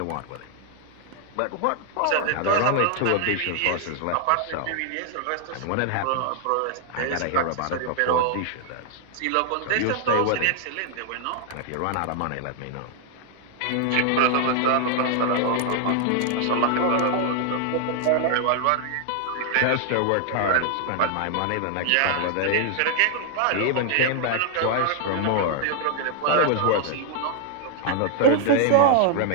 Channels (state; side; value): different; both; correlation 0.00